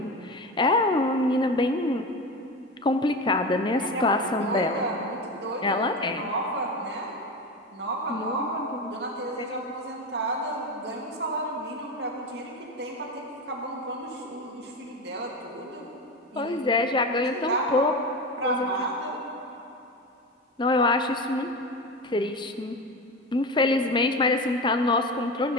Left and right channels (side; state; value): both; normal; correlation 0.24